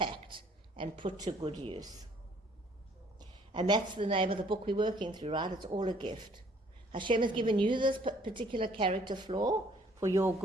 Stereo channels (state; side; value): normal; both; correlation 0.61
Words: and put to good use. And that's the name of the book we're working through, right? It's all a gift. Hashem has given you this particular character flaw for your